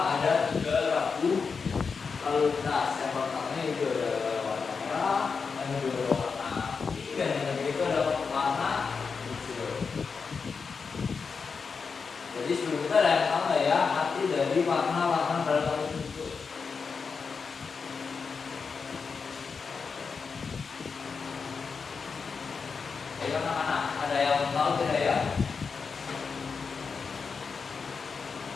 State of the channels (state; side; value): quieter; right; 5.3 dB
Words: ada 3 rambu lalu lintas. Yang pertama itu ada warna merah, yang kedua warna putih, dan yang ketiga itu ada warna hijau. Jadi sebelum kita ada yang tahu ya arti dari warna-warna dalam tersebut. Ayo anak-anak, ada yang tahu tidak ya?